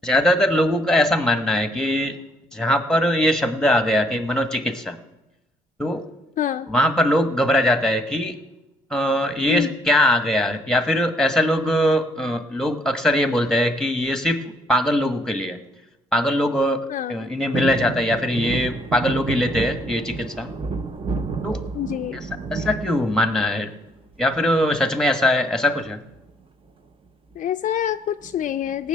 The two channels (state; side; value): normal; both; correlation 0.67